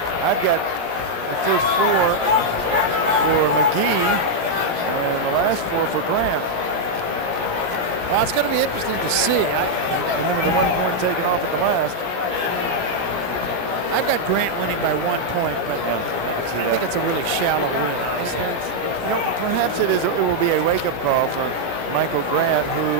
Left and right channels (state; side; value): late; left; 17 ms